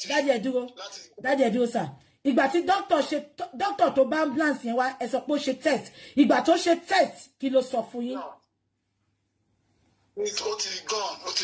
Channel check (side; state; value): both; identical; correlation 1.00